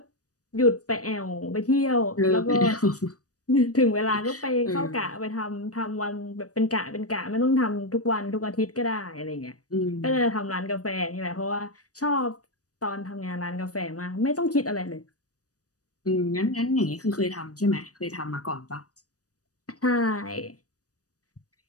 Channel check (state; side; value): late; right; 0.67 ms